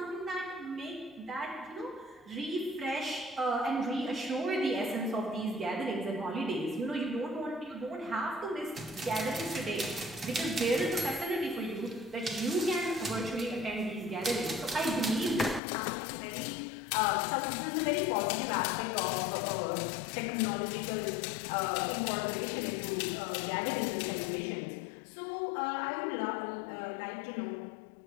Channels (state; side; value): drops out; right; at 15.6 s